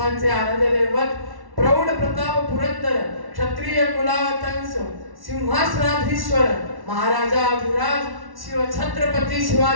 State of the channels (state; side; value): late; left; 1.1 ms